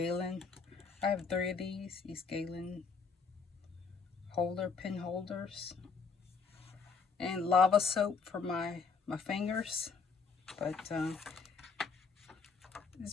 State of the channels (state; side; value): quieter; right; 5.1 dB